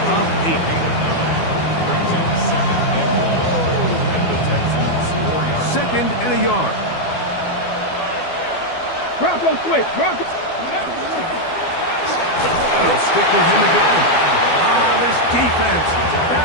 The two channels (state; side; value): late; right; 12 ms